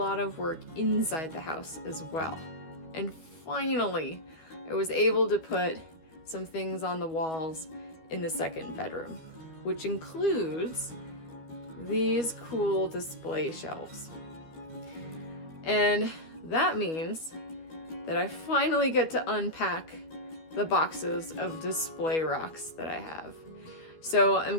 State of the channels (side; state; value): right; late; 12 ms